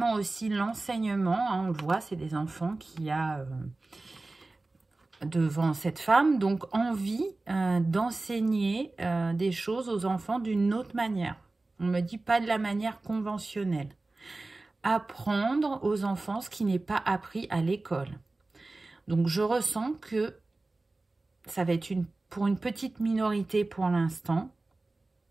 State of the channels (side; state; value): left; quieter; 3.2 dB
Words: aussi l'enseignement. Hein, on le voit, c'est des enfants qu'il y a devant cette femme. Donc, envie d'enseigner des choses aux enfants d'une autre manière. On me dit pas de la manière conventionnelle. Apprendre aux enfants ce qui n'est pas appris à l'école. Donc, je ressens que ça va être pour une petite minorité pour l'instant.